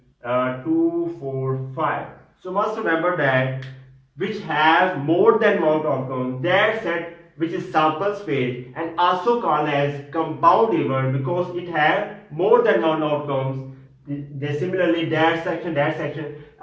2, 4, 5. So must remember that which has more than one outcome, that set which is sample space and also called as compound event because it has more than one outcomes. They similarly that section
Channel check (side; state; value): both; identical; correlation 1.00